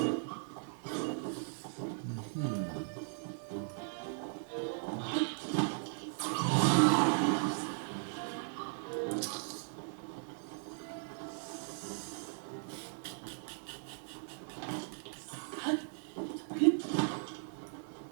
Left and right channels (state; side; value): silent; left; digital silence